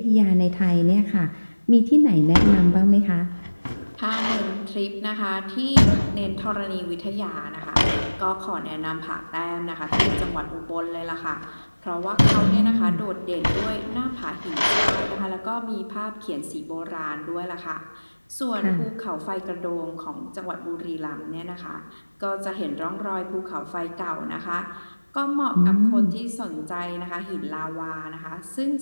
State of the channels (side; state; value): both; inverted; correlation -1.00